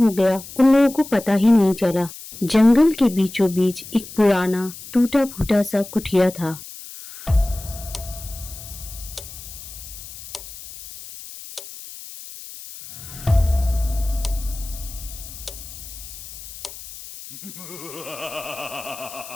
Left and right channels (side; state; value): left; noise; hiss, 14 dB below the sound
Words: गया उन लोगों को पता ही नहीं चला। जंगल के बीचों बीच एक पुराना टूटा फूटा सा कुटिया था।